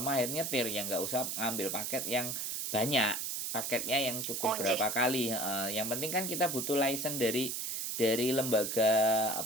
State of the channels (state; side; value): noise; right; hiss, 2 dB below the sound